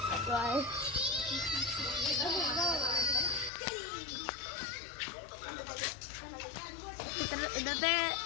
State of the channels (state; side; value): drops out; right; at 3.5 s